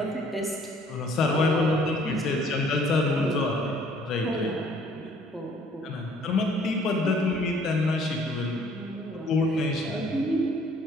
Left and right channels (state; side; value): normal; both; correlation 0.59